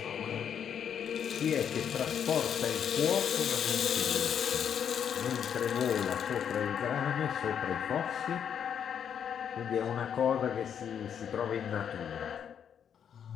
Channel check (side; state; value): right; quieter; 8.3 dB